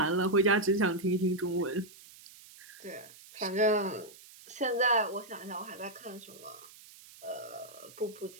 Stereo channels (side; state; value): right; noise; hiss, 20 dB below the sound